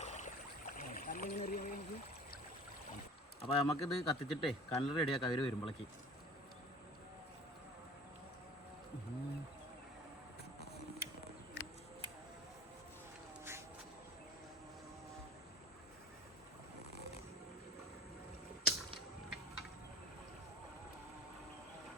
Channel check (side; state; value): both; normal; correlation 0.42